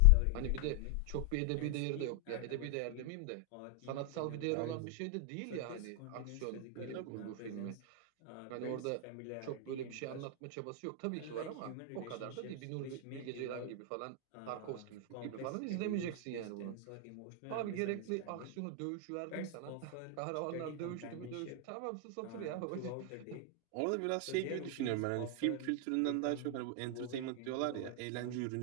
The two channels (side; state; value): both; different; correlation 0.00